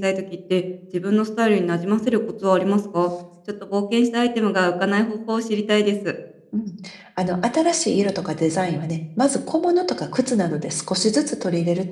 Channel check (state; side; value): identical; both; correlation 1.00